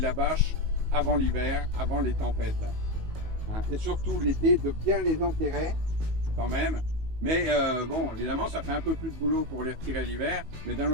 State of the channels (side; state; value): left; late; 19 ms